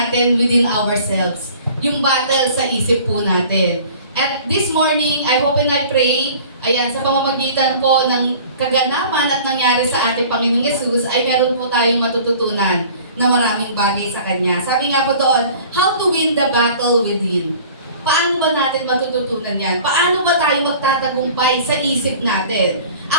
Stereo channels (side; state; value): both; inverted; correlation -0.47